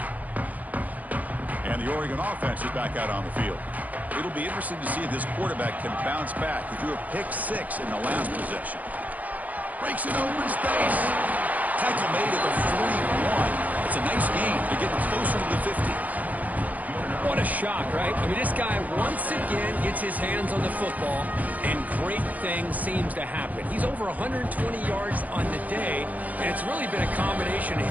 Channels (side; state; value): left; late; 0.078 ms